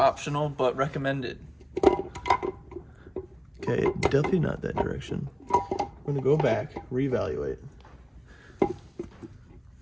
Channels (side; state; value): both; identical; correlation 1.00